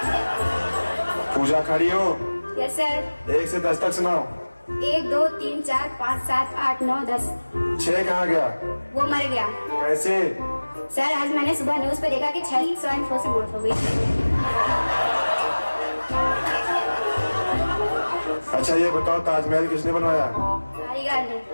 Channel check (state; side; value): inverted; both; correlation -1.00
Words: पूजा खड़ी हो। Yes sir. 1 से 10 तक सुनाओ। 1 2 3 4 5 7 8 9 10। 6 कहाँ गया? वो मर गया। कैसे? सर आज मैंने सुबह न्यूज पे देखा कि 6 स्वाइन फ्लू से मौत हो गई। अच्छा ये बताओ, ताजमहल किसने बनवाया? कारीगर ने।